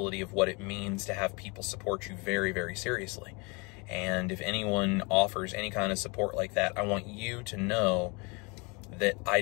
of what it means to have people support you very, very seriously. And if anyone offers any kind of support like that, I want you to know that I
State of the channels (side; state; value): right; quieter; 29.5 dB